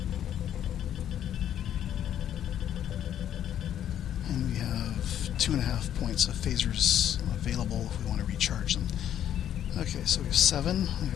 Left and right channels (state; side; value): quieter; right; 10.5 dB